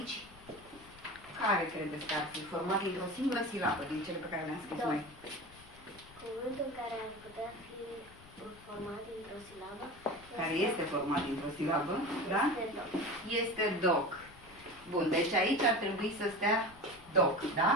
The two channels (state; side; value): noise; left; rumble, 22 dB below the sound